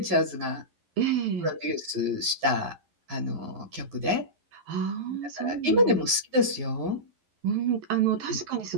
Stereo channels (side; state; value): left; late; 11 ms